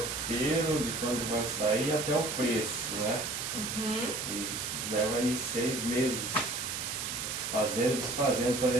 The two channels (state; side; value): noise; right; hiss, 3 dB below the sound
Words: de quando vai sair até o preço, né? E leva aí 6 meses fazendo e desfazendo